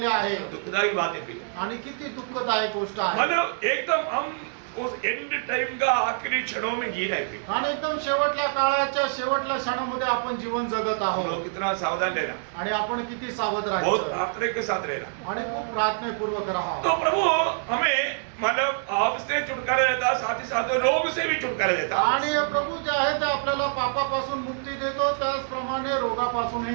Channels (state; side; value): silent; left; digital silence